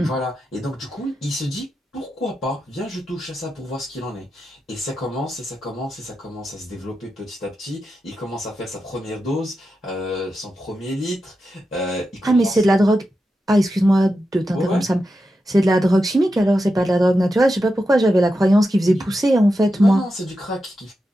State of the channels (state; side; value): normal; both; correlation 0.89